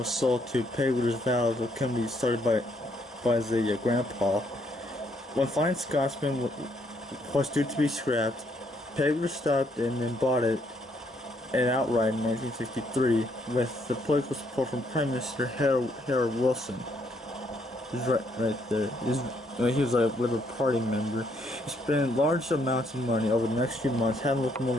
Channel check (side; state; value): both; normal; correlation 0.71